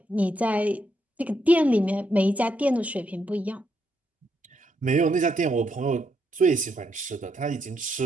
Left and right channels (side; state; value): both; normal; correlation 0.78